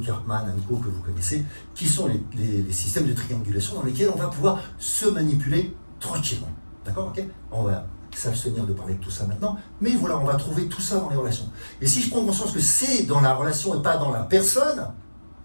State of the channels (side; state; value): both; inverted; correlation -1.00